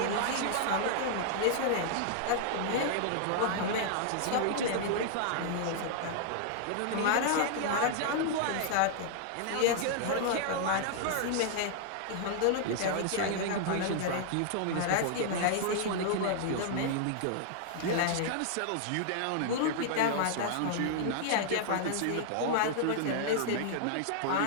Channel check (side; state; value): both; different; correlation -0.01